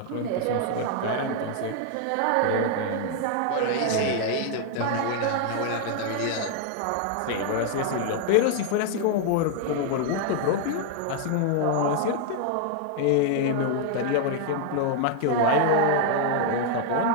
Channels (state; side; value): different; both; correlation 0.00